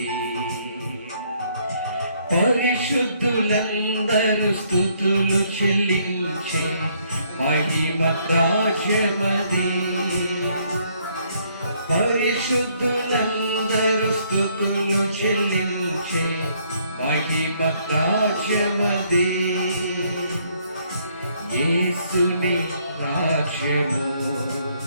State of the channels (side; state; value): both; inverted; correlation -0.68